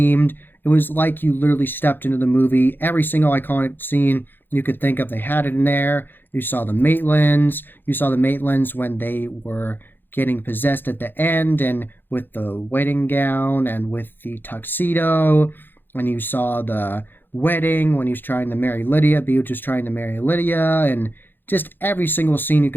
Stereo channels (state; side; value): late; right; 0.097 ms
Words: It was like you literally stepped into the movie. Every single iconic scene you could think of, they had it in there. You saw the Maitlands. You saw the Maitlands when they were getting possessed at the end, and with the wedding gown and with the tuxedo. And you saw the wedding when he was trying to marry Lydia. Beetlejuice was trying to marry Lydia, and just every single scene you